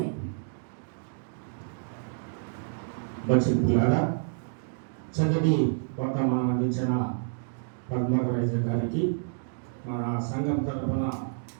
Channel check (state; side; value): silent; left; digital silence